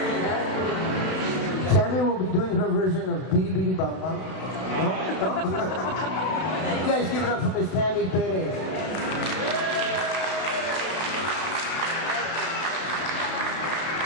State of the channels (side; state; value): right; late; 32 ms